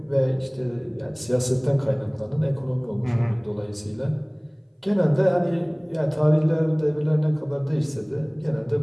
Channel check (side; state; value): both; identical; correlation 1.00